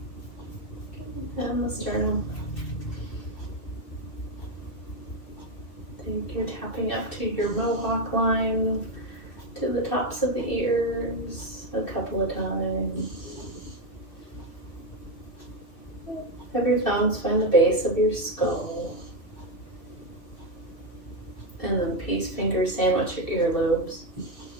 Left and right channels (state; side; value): late; right; 2.5 ms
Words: And the sternum. Think you're tapping up to your mohawk line, to the tops of the ears a couple of times. Have your thumbs find the base of your skull. And then peace fingers sandwich your earlobes.